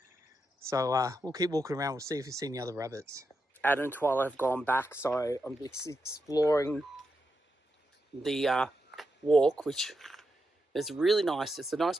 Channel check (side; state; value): both; normal; correlation 0.85